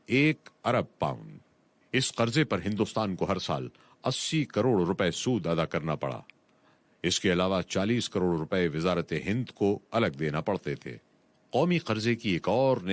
1 ارب پاؤنڈ۔ اس قرضے پر ہندوستان کو ہر سال 80 کروڑ روپے سود ادا کرنا پڑا۔ اس کے علاوہ 40 کروڑ روپے وزارت ہند کو الگ دینا پڑتے تھے۔ قومی قرضے کی ایک اور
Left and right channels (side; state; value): both; identical; correlation 1.00